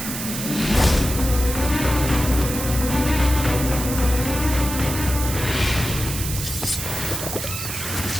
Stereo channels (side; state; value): right; noise; hiss, 6 dB below the sound